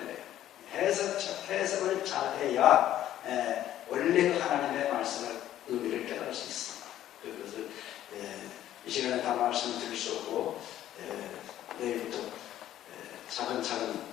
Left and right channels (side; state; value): right; quieter; 12.4 dB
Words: 해석을 잘 해야 원래 그 하나님의 말씀을 의미를 깨달을 수 있습니다. 그것을 이 시간에 다 말씀을 드릴 수 없고 내일부터 차근차근